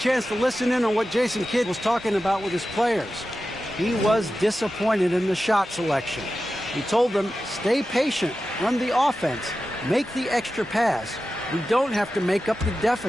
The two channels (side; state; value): both; normal; correlation 0.93